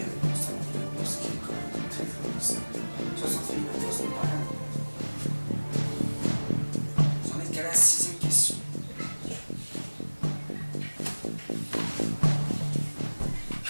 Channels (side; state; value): both; inverted; correlation -1.00